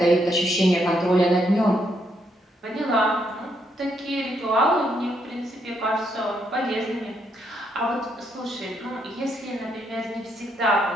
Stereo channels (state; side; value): normal; both; correlation 0.76